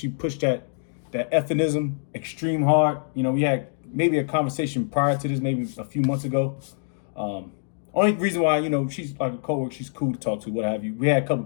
pushed that effinism extreme hard. We had maybe a conversation prior to this, maybe a few months ago. Only reason why, she's like a coworker, she's cool to talk to, what have you. We had a couple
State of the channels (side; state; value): right; silent; digital silence